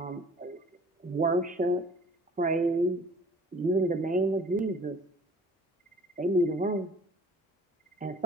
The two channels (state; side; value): normal; both; correlation 0.51